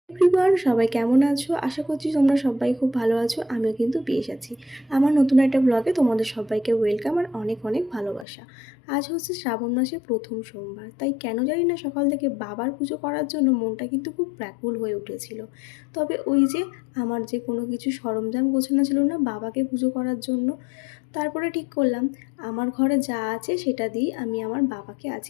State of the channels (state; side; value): drops out; right; at 8.2 s